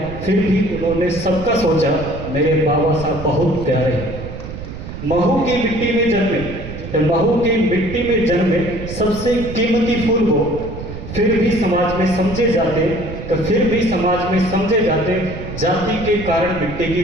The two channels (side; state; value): right; noise; rumble, 10 dB below the sound